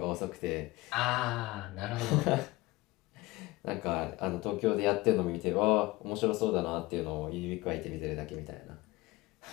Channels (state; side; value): quieter; right; 20.1 dB